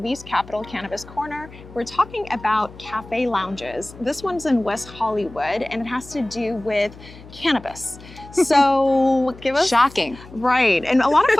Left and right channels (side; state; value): left; noise; hum, 19 dB below the sound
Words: Capital Cannabis Corner. We're talking about cafe lounges. This one's in West Hollywood and it has to do with cannabis. So give us... Shocking. Right, and a lot of